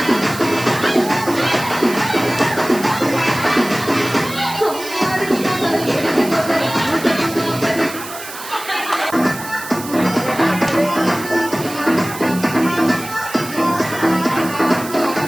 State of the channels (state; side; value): noise; right; hiss, 12 dB below the sound